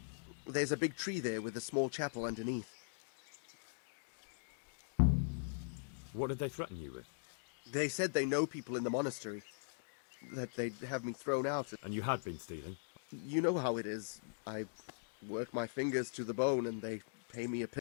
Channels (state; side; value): silent; right; digital silence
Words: There's a big tree there with a small chapel underneath. What did they threaten you with? They said they know people in the monastery. That they'd have me thrown out. And you had been stealing? You know how it is. I work my fingers to the bone and they pay me a...